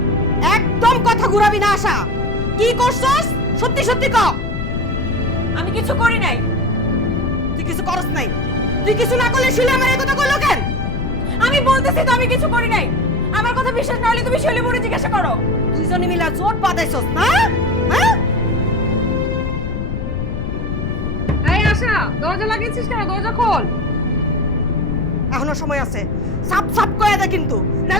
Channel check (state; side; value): noise; left; rumble, 4 dB below the sound